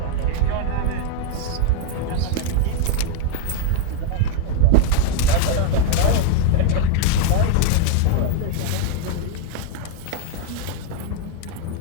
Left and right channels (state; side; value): different; both; correlation 0.00